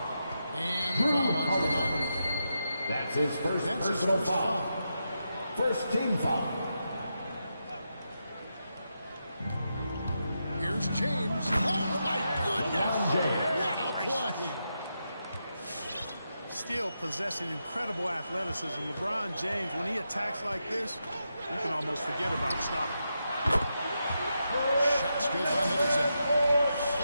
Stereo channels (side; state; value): both; inverted; correlation -0.86